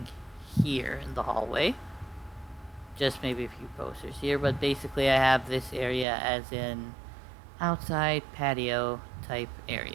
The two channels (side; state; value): left; drops out; at 6.1 s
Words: here in the hallway. Just maybe a few posters here, but basically I have this area as an outside patio type